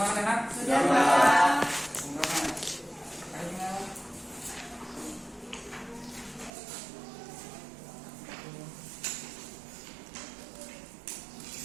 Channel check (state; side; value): drops out; left; at 6.5 s